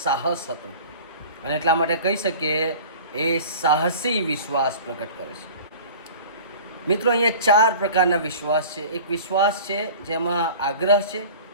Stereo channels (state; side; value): inverted; both; correlation -0.41